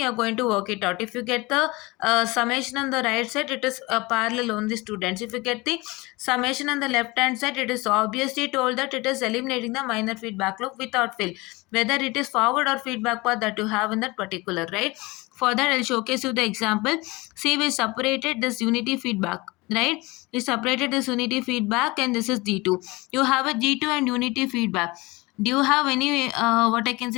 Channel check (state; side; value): quieter; right; 23.2 dB